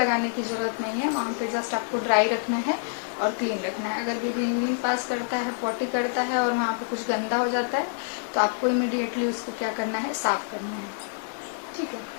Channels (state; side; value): silent; right; digital silence